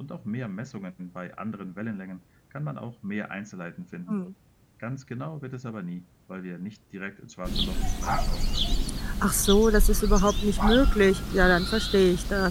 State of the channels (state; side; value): identical; both; correlation 1.00